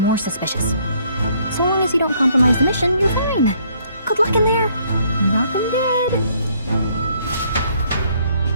suspicious. So long as you don't compromise the mission, you're fine. Good luck in there. Knock 'em dead.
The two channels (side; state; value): both; inverted; correlation -0.66